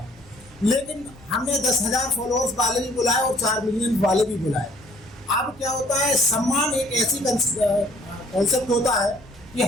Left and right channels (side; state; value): both; normal; correlation 0.59